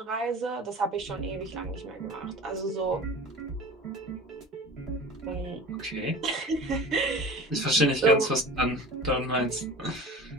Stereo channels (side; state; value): both; normal; correlation 0.37